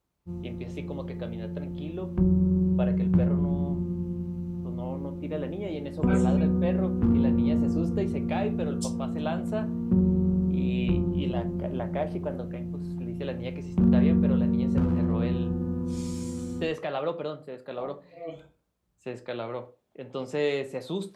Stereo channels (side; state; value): both; identical; correlation 1.00